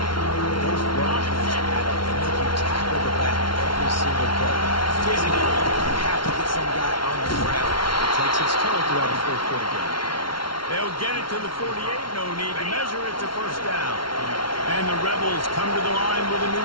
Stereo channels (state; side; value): late; right; 0.73 ms